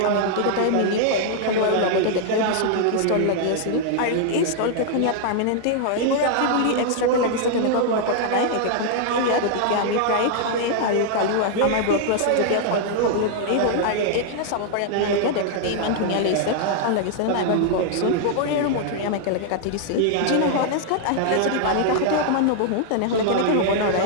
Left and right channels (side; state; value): both; different; correlation 0.00